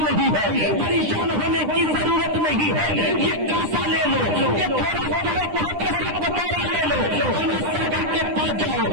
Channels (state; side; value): late; left; 9.9 ms